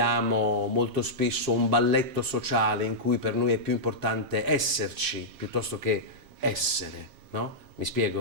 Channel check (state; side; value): late; left; 7.4 ms